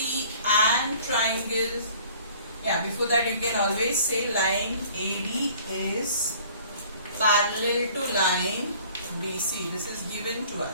and triangle, before that you can always say line AD is parallel to line BC. This is given to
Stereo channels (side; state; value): both; inverted; correlation -0.52